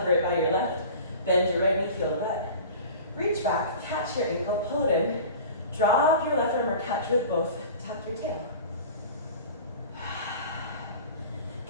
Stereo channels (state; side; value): inverted; both; correlation -0.38